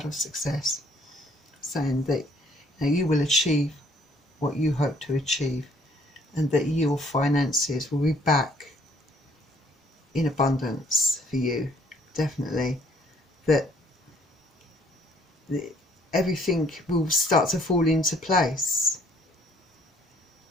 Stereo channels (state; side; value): normal; both; correlation 0.62